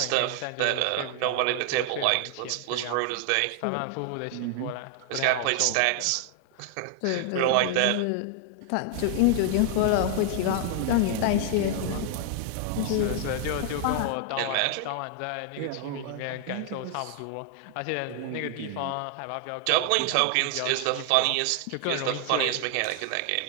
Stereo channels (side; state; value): both; different; correlation 0.00